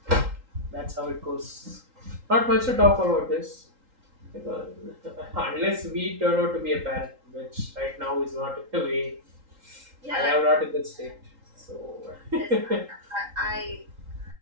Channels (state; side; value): late; left; 3.8 ms